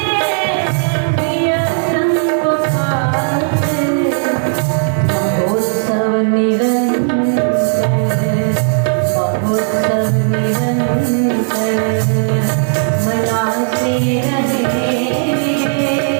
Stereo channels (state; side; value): silent; left; digital silence